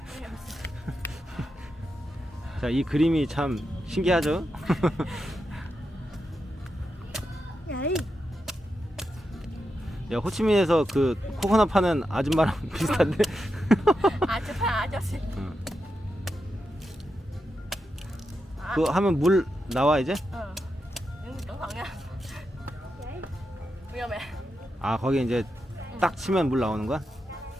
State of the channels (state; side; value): normal; both; correlation 0.87